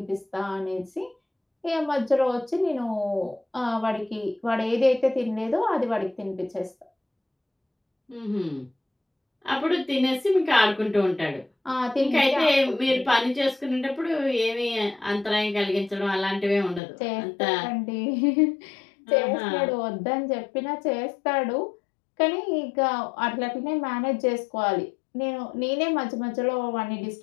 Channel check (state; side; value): drops out; right; at 16.8 s